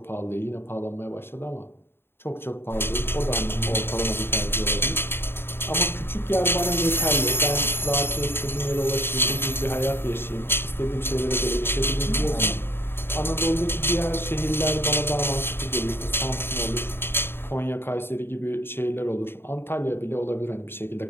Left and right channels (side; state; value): right; late; 0.11 ms